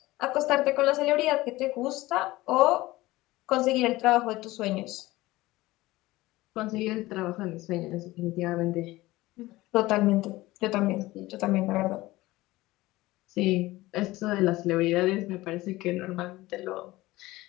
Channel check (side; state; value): right; quieter; 18.7 dB